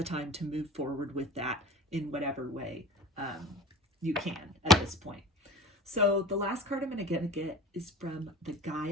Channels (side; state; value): both; normal; correlation 0.38